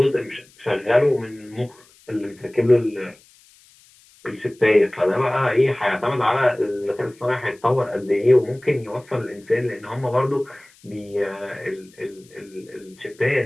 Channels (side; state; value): left; noise; hiss, 28 dB below the sound